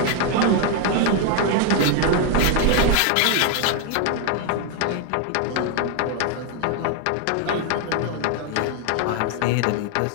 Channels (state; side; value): different; both; correlation 0.01